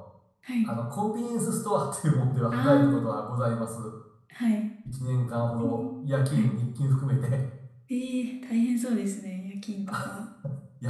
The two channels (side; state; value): both; identical; correlation 1.00